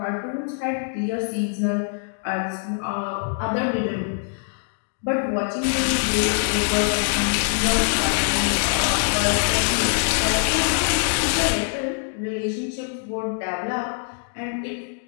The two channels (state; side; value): silent; right; 63 dB below the other